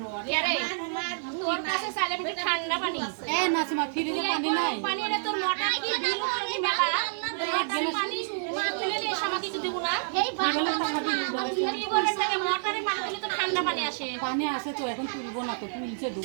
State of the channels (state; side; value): silent; left; digital silence